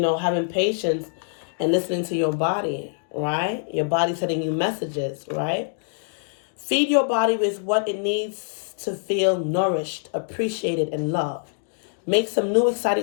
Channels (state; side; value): silent; right; digital silence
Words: patience and listening to your body, right? Your body sending you messages, right? Feed your body with what it needs to feel nourished, appreciated, and loved. Make some new